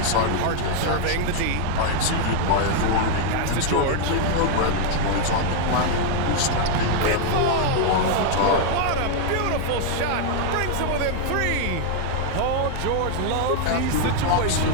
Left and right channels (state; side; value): different; both; correlation 0.00